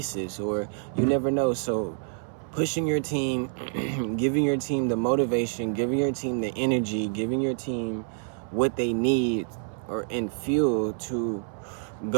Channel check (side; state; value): left; silent; 60 dB below the other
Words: or you never know. So pushing your team, giving your team the motivation, giving your team the energy, giving your team what they need and fuel to